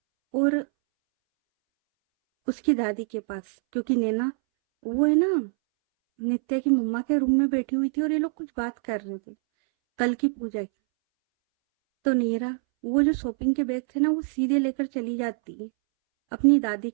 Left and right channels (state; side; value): silent; left; 62 dB below the other